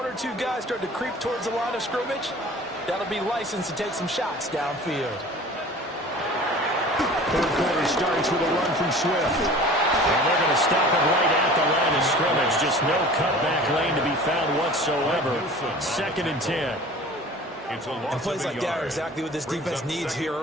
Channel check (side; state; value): both; normal; correlation 0.43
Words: 2 guys start to creep towards the line of scrimmage, that'll be licensed to take some shots downfield. Third quarter starts with a run from Swift. And they're going to stop it right at the line of scrimmage. Just no cutback lane to be found whatsoever. 2nd and 10. And plays like that are exactly what this defense needs here